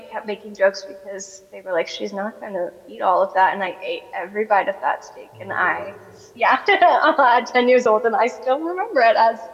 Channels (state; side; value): identical; both; correlation 1.00